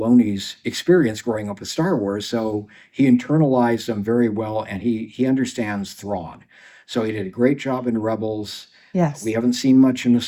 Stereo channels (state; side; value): identical; both; correlation 1.00